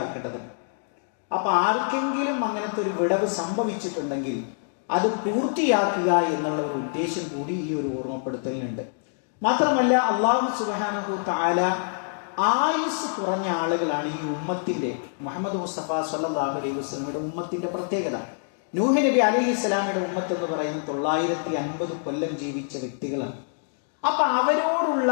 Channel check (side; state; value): right; silent; digital silence